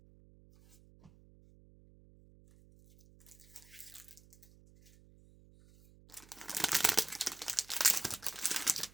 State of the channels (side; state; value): right; noise; hum, 24 dB below the sound